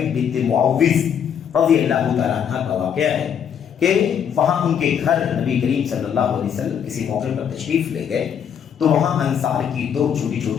بنت معوذ رضی اللہ تعالیٰ عنہ کا واقعہ ہے کہ وہاں ان کے گھر نبی کریم صلی اللہ علیہ وسلم کسی موقع پر تشریف لے گئے، تو وہاں انصار کی 2 چھوٹی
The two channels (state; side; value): quieter; right; 8.2 dB